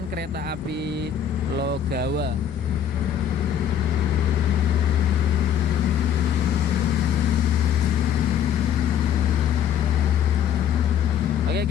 kereta api Logawa.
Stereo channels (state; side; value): quieter; right; 9.0 dB